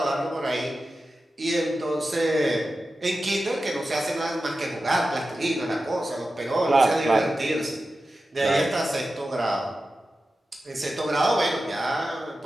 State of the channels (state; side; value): normal; both; correlation 0.93